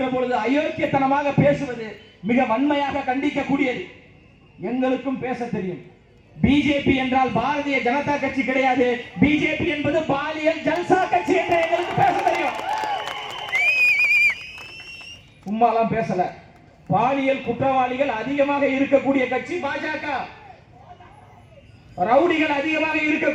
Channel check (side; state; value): both; identical; correlation 1.00